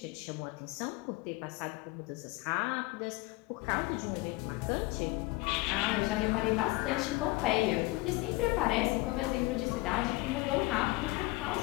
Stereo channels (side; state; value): right; quieter; 21.8 dB